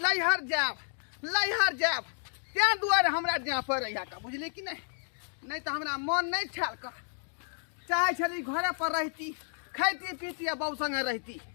जाब त्या दुआरे हमरा जाय पड़े का बुझली कि नहीं तो हमरा मन नहीं ठाल कर चाहे छली घरे पर रहती खाती पीती बहू संगे रहती,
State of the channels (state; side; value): silent; right; 57 dB below the other